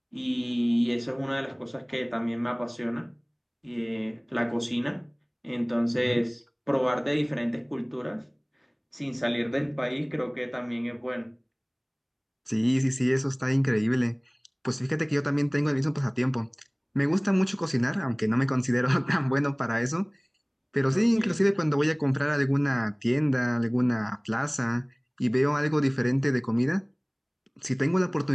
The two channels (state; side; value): identical; both; correlation 1.00